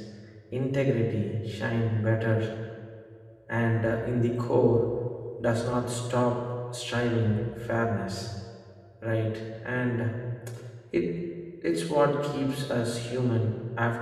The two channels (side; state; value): both; identical; correlation 1.00